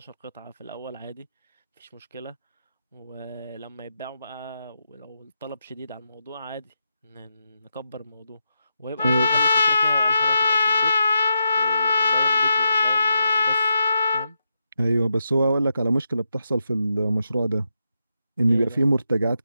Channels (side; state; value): both; inverted; correlation -0.85